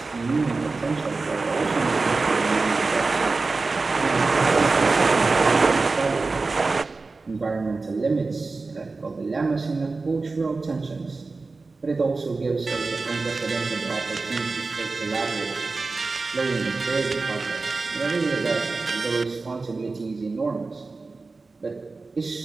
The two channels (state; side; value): quieter; left; 3.8 dB